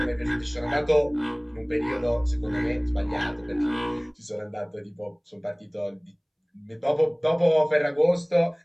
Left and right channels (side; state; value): both; identical; correlation 1.00